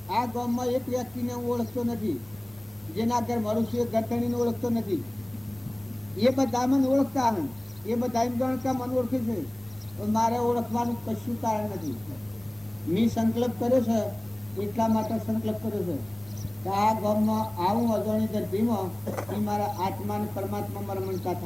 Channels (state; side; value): noise; right; hum, 26 dB below the sound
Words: આ ગામમાં એક વ્યક્તિને હું ઓળખતો નથી, જેના ઘર મારું છું એ ગરતણીને ઓળખતો નથી, એ બધા મને ઓળખતા હન, એ બધા એમ ગણતા મને ઓળખે છે, મારે ઓળખવાનું કશું કારણ નથી। મેં સંકલ્પ કર્યો છે એટલા માટે સંકલ્પ કર્યો છે કે આ ગામમાં આવું અજાણી ધરતીમાં એ મારા આત્મા અને પરમાત્મામાં રમણતા